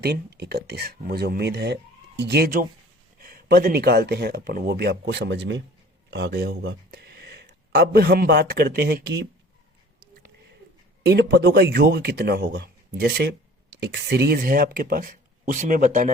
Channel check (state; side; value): normal; both; correlation 0.48